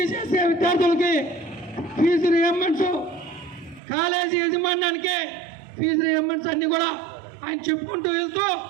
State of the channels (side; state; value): left; drops out; at 3.8 s